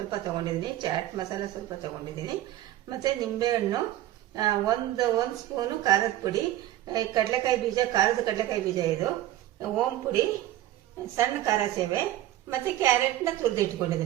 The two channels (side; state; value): left; quieter; 13.9 dB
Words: ತಗೊಂಡಿದ್ದೀನಿ. ಚಾಟ್ ಮಸಾಲ ಸ್ವಲ್ಪ ತಗೊಂಡಿದ್ದೀನಿ. ಮತ್ತೆ ನಿಂಬೆಹಣ್ಣು, ಒಂದು ಸ್ಪೂನು ಖಾರದ ಪುಡಿ, ಕಡಲೆಕಾಯಿ ಬೀಜ, ಖಾರದ ಕಡಲೆಕಾಯಿ ಬೀಜ, ಇದು ಓಂ ಪುಡಿ, ಸಣ್ಣ ಖಾರ ಸೇವೆ, ಮತ್ತೆ ಕ್ಯಾರೆಟ್ನ ತುರಿದು